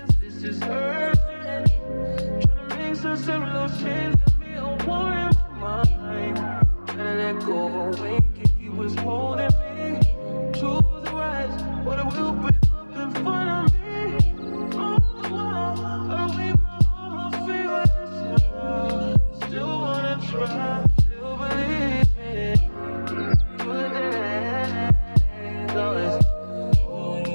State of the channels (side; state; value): both; inverted; correlation -1.00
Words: This is urgent. Trying to make sense of those chains that me a war in my mind. Gotta let go away, he was holding me. Choose the right, but it will break up in front of me. All the while, I wait my almost feel still wanna try, still believe it. Good days,